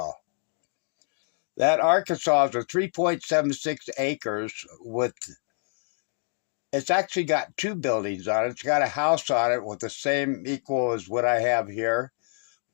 That Arkansas is a 3.76 acres with, it's actually got 2 buildings on it. It's got a house on it with the same equal as what I have here,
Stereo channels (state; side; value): silent; right; 60 dB below the other